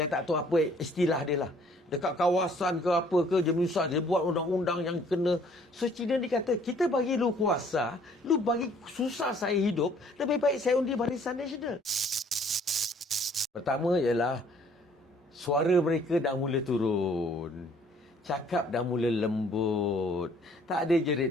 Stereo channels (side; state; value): both; normal; correlation 0.59